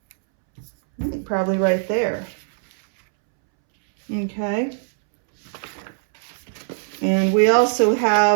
I think probably right there. Okay. And we also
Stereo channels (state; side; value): silent; left; 65 dB below the other